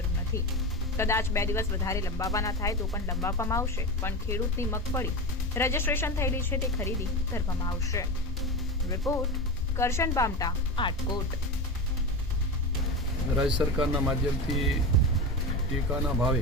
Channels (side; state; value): both; normal; correlation 0.22